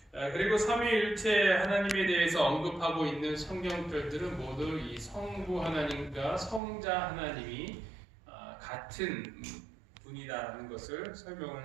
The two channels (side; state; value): left; drops out; at 6.6 s